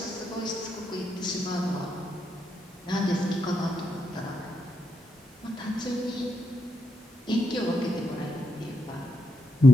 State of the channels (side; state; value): both; normal; correlation 0.82